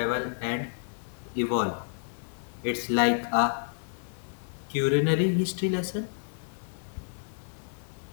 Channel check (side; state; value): right; silent; digital silence